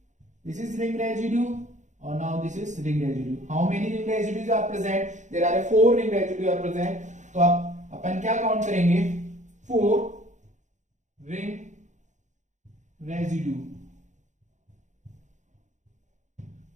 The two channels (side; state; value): left; late; 0.35 ms